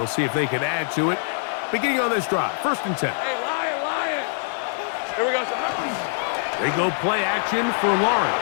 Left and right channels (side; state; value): right; silent; digital silence